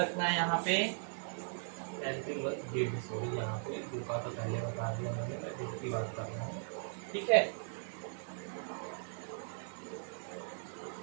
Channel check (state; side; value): silent; left; 52 dB below the other